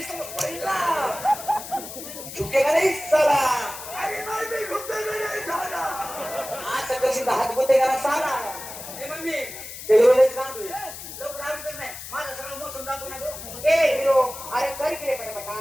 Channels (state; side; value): noise; left; hiss, 11 dB below the sound